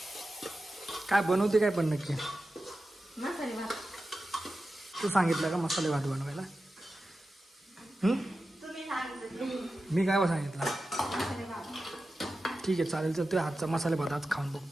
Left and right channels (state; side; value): normal; both; correlation 0.92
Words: काय बनवते काय पण नक्की मसाले भात. तू सांगितलं का मसाले भात बनवायला? तुम्ही सांगितलं मी काय सांगितलं? मसाले भात. ठीक आहे चालेल. तर तुझ्या हातचा मसाले भात आज खाऊन